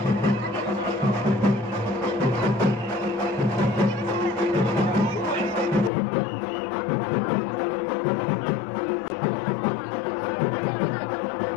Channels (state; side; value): drops out; right; at 5.9 s